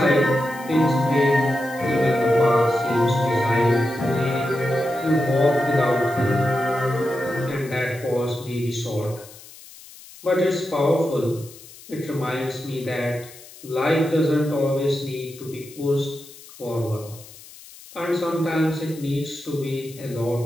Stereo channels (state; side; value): noise; left; hiss, 19 dB below the sound